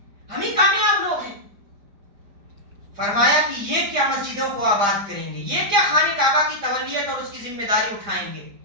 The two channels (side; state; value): left; late; 4.9 ms